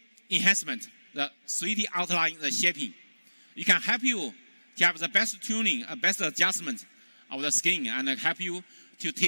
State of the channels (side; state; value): both; inverted; correlation -1.00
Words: enhancement, the 3D outline, the shaping. It can help you to have the best tuning, best adjustment of the skin, and help you to